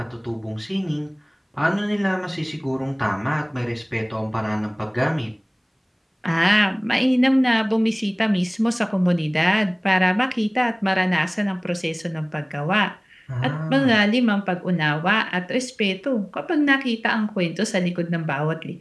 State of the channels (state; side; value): identical; both; correlation 1.00